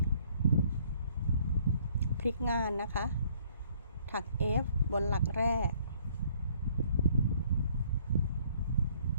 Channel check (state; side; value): inverted; both; correlation -0.62